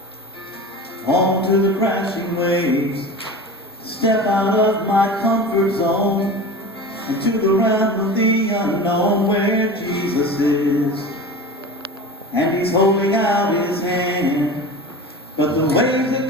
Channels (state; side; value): normal; both; correlation 0.33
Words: onto the crashing waves, step out of my comfort zone into the realm of the unknown where Jesus is, and he's holding out his hand, but the waves